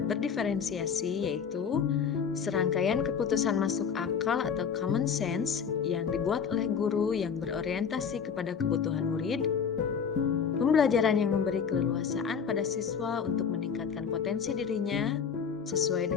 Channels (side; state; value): right; quieter; 6.8 dB